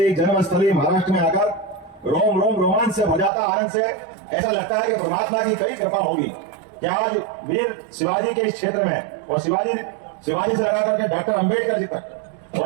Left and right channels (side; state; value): left; drops out; at 3.3 s